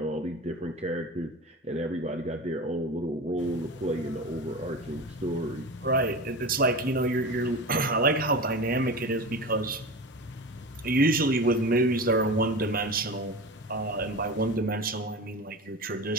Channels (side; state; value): both; normal; correlation 0.29